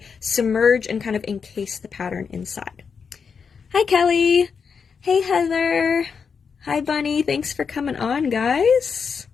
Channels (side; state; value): right; quieter; 6.0 dB